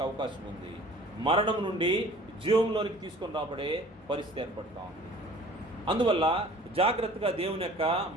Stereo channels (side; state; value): both; normal; correlation 0.48